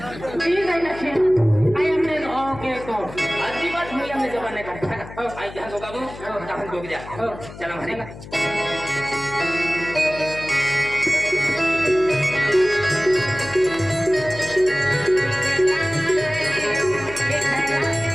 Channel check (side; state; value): left; noise; hum, 15 dB below the sound